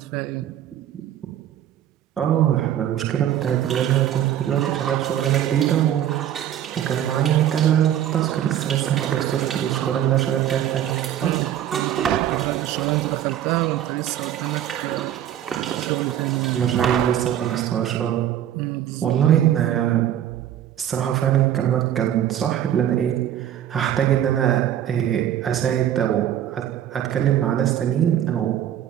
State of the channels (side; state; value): left; quieter; 11.0 dB